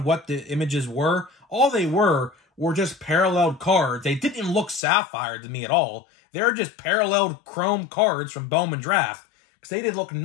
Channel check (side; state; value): right; drops out; at 4.8 s